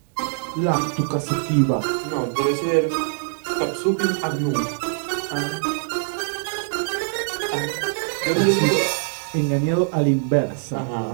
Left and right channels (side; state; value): left; silent; digital silence